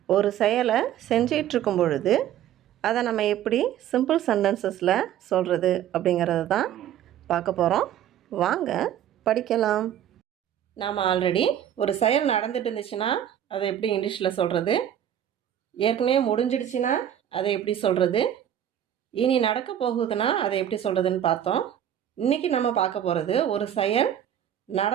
ஒரு செயலை செஞ்சிட்ருக்கும் பொழுது அதை நம்ம எப்படி சிம்பிள் சென்டென்சஸில் சொல்கிறது அப்படிங்கிறது தான் பார்க்க போகிறோம். வாங்க படிக்கலாம். நாம் ஆல்ரெடி ஒரு செயல் நடந்துட்டு இருந்துச்சுன்னா அதை எப்படி இங்கிலீஷில் சொல்கிறது, ஏற்கனவே முடிஞ்சிடுச்சுன்னா அதை எப்படி சொல்கிறது, இனி நடக்க போகுதுன்னா அதை எப்படி சொல்கிறதுன்னு பார்த்தோம். இன்றைக்கி நம்ம பார்க்க போகிறது ஒரு செயல்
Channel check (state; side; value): quieter; left; 10.6 dB